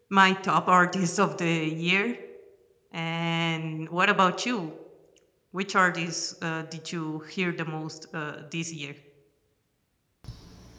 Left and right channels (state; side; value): identical; both; correlation 1.00